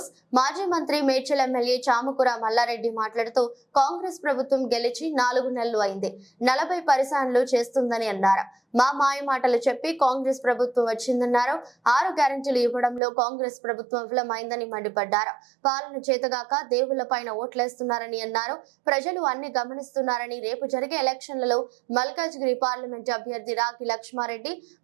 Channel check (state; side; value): drops out; left; at 13.0 s